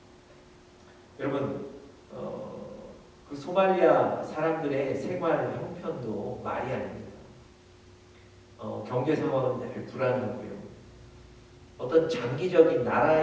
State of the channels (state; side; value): identical; both; correlation 1.00